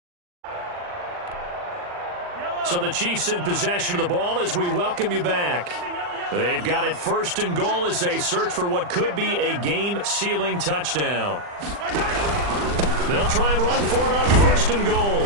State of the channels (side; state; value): left; late; 40 ms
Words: So the Chiefs in possession of the ball as we welcome you back. They've got it first and goal as they search for what could be a game-sealing touchdown. They'll try and run for it on first and goal.